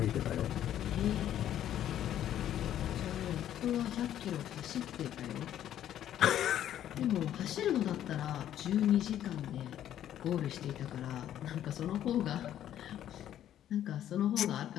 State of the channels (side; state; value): right; quieter; 11.2 dB